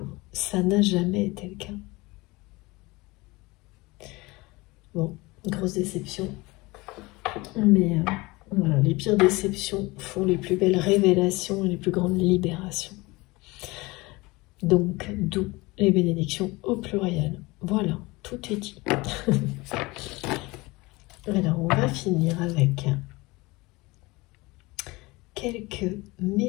Ça n'a jamais été le cas. Bon, grosse déception. Mais voilà, les pires déceptions font les plus belles révélations et les plus grandes libérations. Donc, d'où les bénédictions au pluriel. Voilà, tout est dit. Alors, on va finir avec quelques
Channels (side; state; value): right; quieter; 22.8 dB